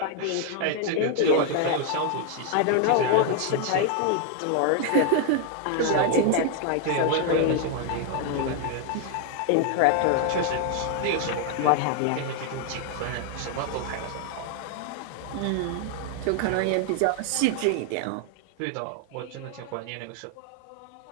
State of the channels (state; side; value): different; both; correlation 0.00